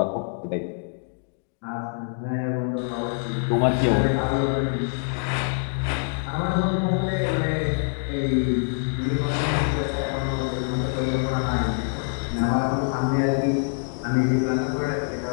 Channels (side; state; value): right; silent; 62 dB below the other